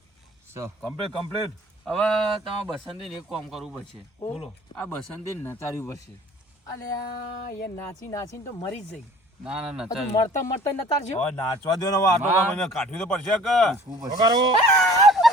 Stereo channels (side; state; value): both; normal; correlation 0.49